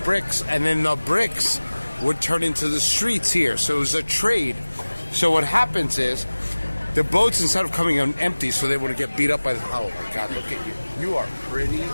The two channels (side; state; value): both; inverted; correlation -1.00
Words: and then the bricks would turn into the streets here. So it was a trade. So what happens is the boats, instead of coming in empty, so they wouldn't get beat up by the... Oh, my God, look at you. You are pretty